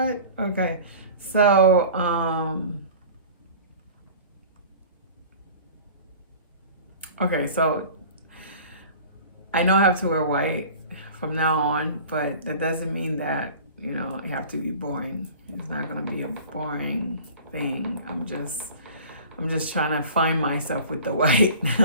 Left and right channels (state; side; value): inverted; both; correlation -0.42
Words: Okay, so so I know I have to wear white from now on, but that doesn't mean that you have to be boring. It's not gonna be a boring thing. I'm just trying to find myself with the white